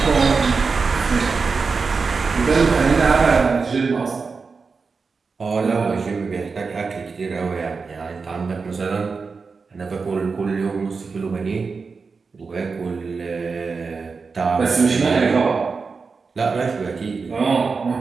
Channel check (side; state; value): left; quieter; 4.8 dB